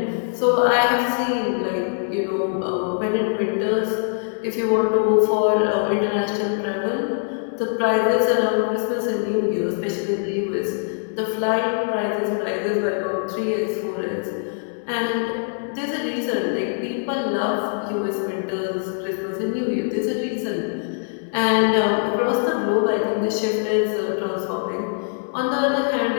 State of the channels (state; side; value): silent; right; digital silence